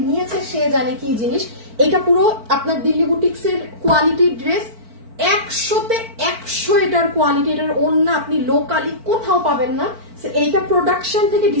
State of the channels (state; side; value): late; left; 4.5 ms